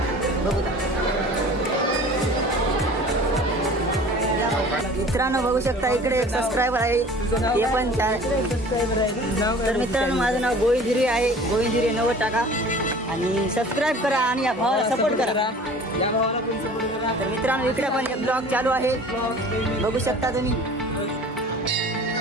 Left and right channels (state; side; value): normal; both; correlation 0.45